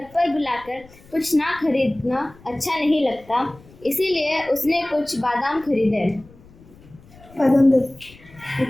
पर बुलाकर कुछ ना खरीदना अच्छा नहीं लगता, इसीलिए उसने कुछ बादाम खरीदे। बादाम दे।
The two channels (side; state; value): left; noise; rumble, 24 dB below the sound